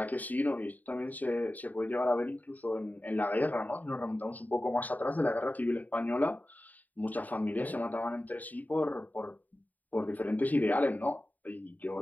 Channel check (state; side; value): late; right; 0.080 ms